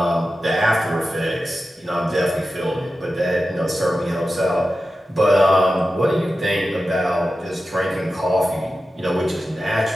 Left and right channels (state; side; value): normal; both; correlation 0.93